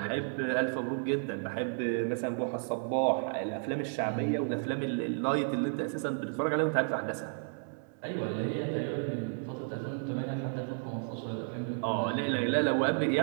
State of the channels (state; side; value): silent; left; 56 dB below the other